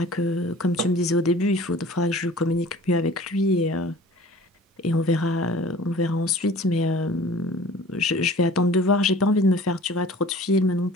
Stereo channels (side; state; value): both; normal; correlation 0.46